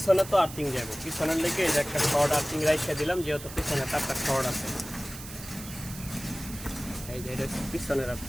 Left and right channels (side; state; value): right; noise; hiss, 13 dB below the sound